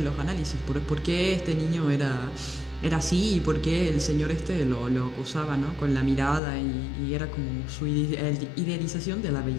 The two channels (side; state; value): right; drops out; at 6.4 s